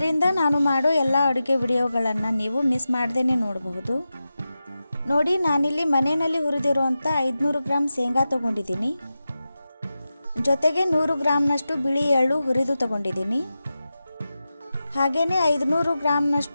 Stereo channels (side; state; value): both; inverted; correlation -0.92